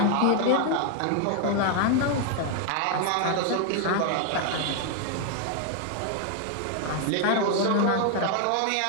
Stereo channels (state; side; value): different; both; correlation 0.00